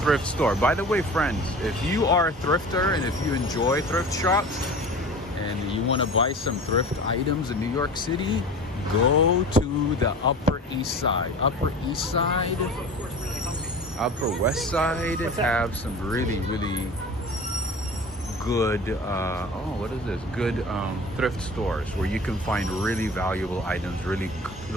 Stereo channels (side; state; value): both; normal; correlation 0.37